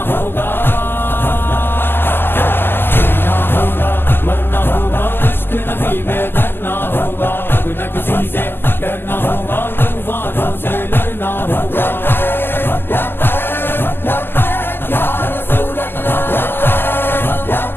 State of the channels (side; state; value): right; late; 0.10 ms